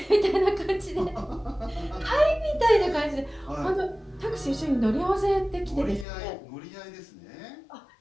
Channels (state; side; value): drops out; right; at 6.1 s